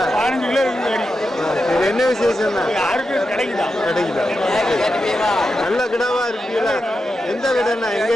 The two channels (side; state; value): both; normal; correlation 0.88